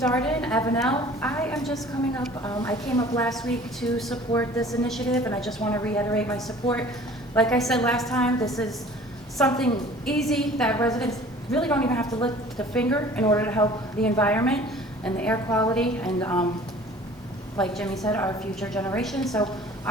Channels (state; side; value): normal; both; correlation 0.48